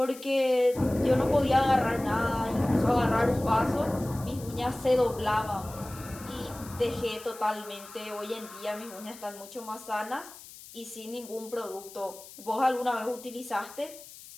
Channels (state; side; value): noise; left; hiss, 17 dB below the sound